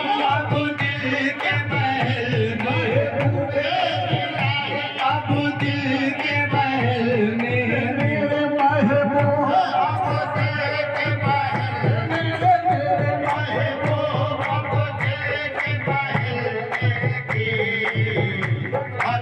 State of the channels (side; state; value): both; identical; correlation 1.00